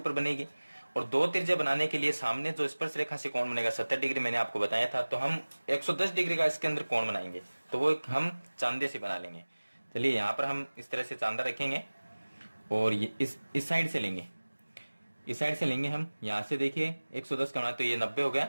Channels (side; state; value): both; inverted; correlation -1.00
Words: बनेगी, और दो त्रिज्या बनाने के लिए सामने जो स्पर्श रेखा से कोण बनेगा 70 डिग्री मैंने आपको बताया था। तो हम 110 डिग्री का इसके अंदर कोण बनाएंगे, तो वो हम चांदे से बना लेंगे। चलिए यहाँ पर हम इस तरह से चांदा रखेंगे और ये इस साइड से लेंगे, इस साइड से लेंगे हम। यहाँ से देखिए 110 का बना तो ये 90 हो गया,